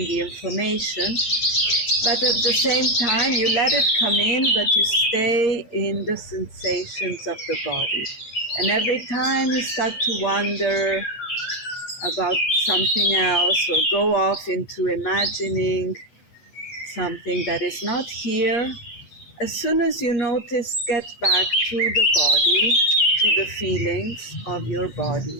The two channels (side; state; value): right; late; 8.4 ms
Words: the information. But at the same time, you let it come in, but you stay in the sensations of the body. And every time you start to wonder about something else or go off into imagining something that is not here, as soon as you notice, get back to the body, to the feelings of your